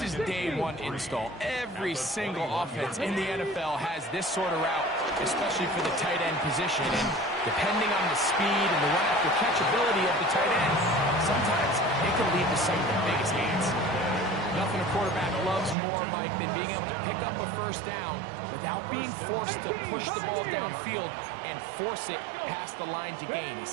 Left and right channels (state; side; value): drops out; left; at 15.8 s